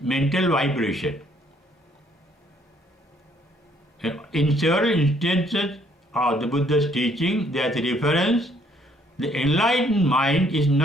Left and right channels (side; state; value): both; normal; correlation 0.65